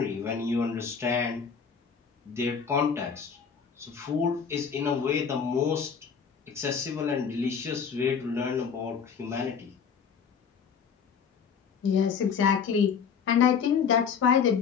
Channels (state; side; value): quieter; right; 6.5 dB